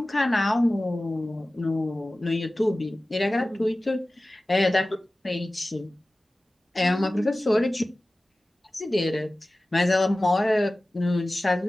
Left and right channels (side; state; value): both; normal; correlation 0.97